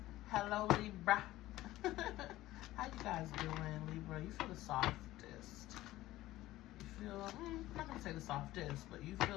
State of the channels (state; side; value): quieter; right; 16.2 dB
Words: Hello, Libra. How you guys doing, Libra? You feel the softest. You feel, I'm not going to say the softest, but you